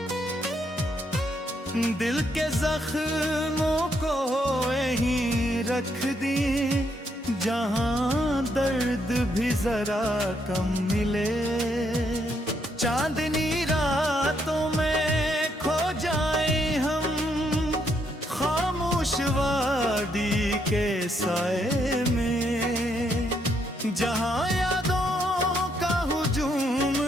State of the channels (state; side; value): normal; both; correlation 0.75